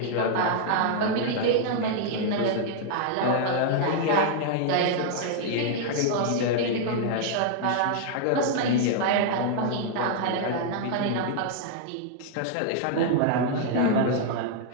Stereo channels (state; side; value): different; both; correlation 0.00